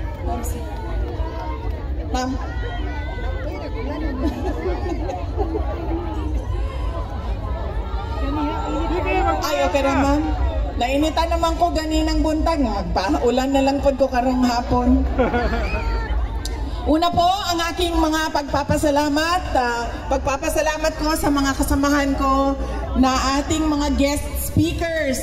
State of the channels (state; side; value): identical; both; correlation 1.00